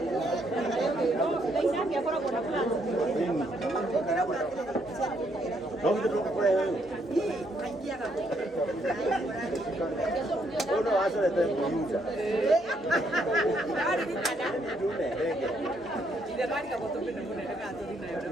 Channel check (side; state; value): both; normal; correlation 0.73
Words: Ndio kutoka kwa wewe. Ono hasa ndio kuuza. Ari ni kada. Ndio ndege. Ile mali kama tope na mbona ndaka tu